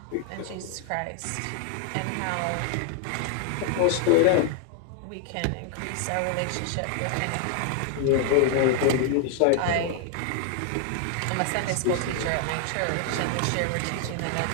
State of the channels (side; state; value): both; different; correlation 0.00